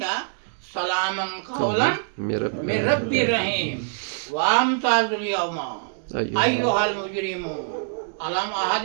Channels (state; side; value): silent; left; digital silence